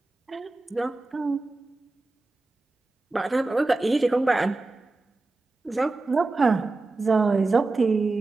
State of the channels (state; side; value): quieter; left; 3.3 dB